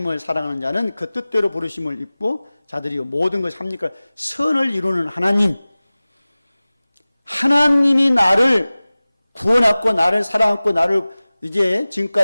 사랑하는 자는 그 뜻대로 부르심을 입고 자들이 모든 것이 합니까? 선을 이루는 하나님. 하나님이 나를 구원하고 나를 사랑하고 나를 이제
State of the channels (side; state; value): both; inverted; correlation -0.98